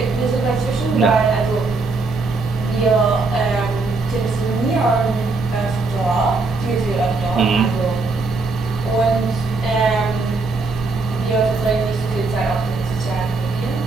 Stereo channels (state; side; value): quieter; left; 3.7 dB